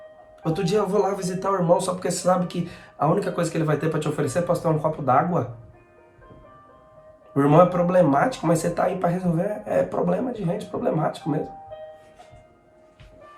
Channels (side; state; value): both; identical; correlation 1.00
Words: Outro dia eu vou lá visitar o irmão só porque você sabe que a única coisa que ele vai ter para te oferecer é pastor um copo d'água. O irmão é problemático, mas você tá aí para resolver. É problema de gente problemático mesmo.